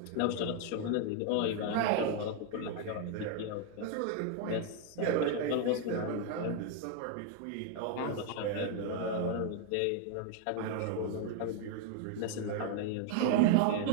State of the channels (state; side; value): different; both; correlation 0.00